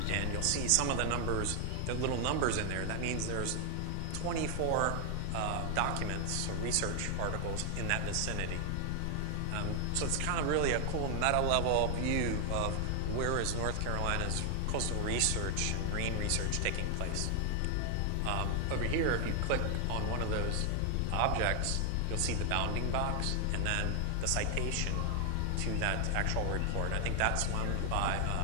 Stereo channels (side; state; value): both; different; correlation 0.01